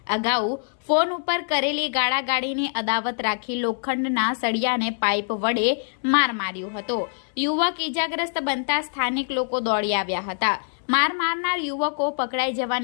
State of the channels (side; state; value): right; silent; 62 dB below the other